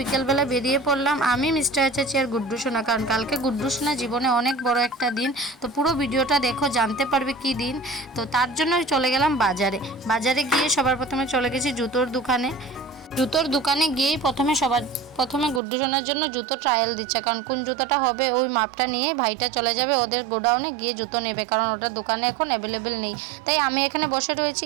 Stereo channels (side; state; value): left; drops out; at 15.6 s